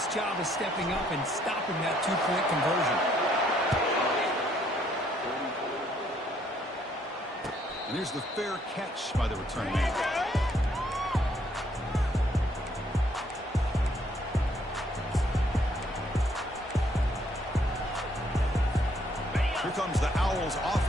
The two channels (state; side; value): normal; both; correlation 0.68